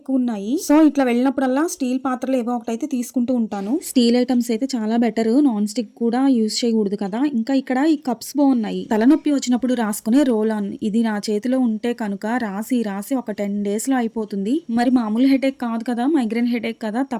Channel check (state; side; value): identical; both; correlation 1.00